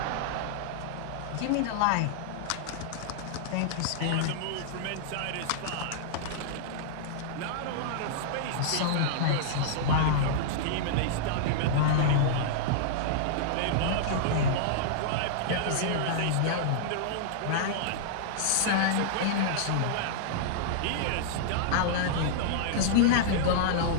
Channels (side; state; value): both; different; correlation -0.01